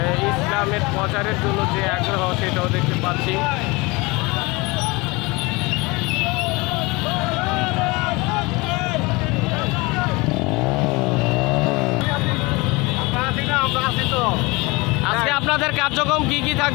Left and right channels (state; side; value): quieter; right; 24.8 dB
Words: ইসলামের প্রচারের জন্য যে আগ্রহ সেটাও দেখতে পাচ্ছি। আজকে আপনাদের কার্যক্রম কি